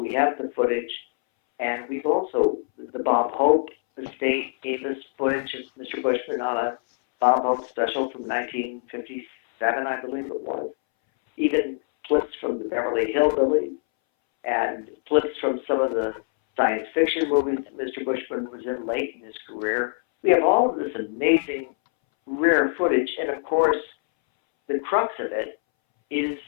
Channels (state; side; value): silent; right; 62 dB below the other